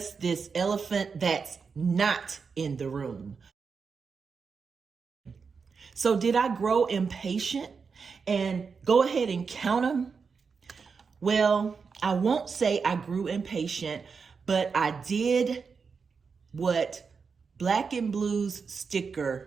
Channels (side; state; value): left; quieter; 5.4 dB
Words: this elephant that's not in the room. So did I grow impatient and go ahead and count them? Well, I won't say I grew impatient, but I did what Black and Blue's